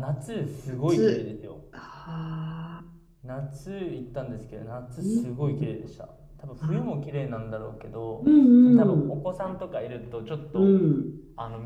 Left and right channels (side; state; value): both; identical; correlation 1.00